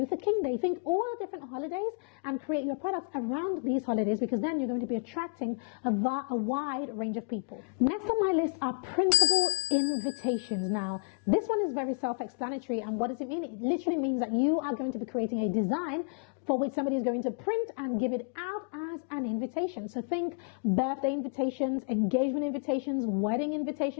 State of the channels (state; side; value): quieter; right; 39.9 dB